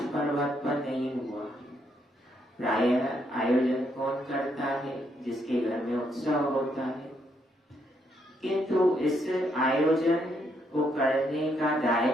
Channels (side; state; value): both; normal; correlation 0.75